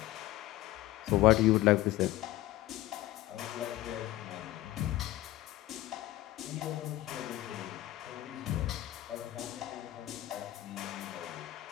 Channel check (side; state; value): right; quieter; 15.8 dB